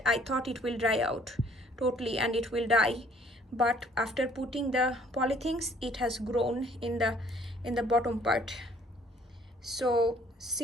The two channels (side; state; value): both; normal; correlation 0.59